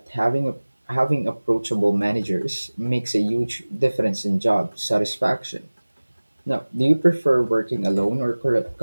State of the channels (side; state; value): both; inverted; correlation -1.00